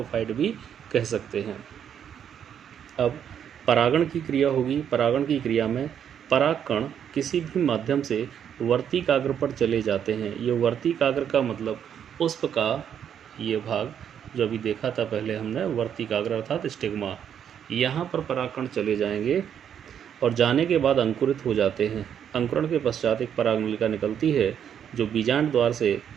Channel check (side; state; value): left; quieter; 8.7 dB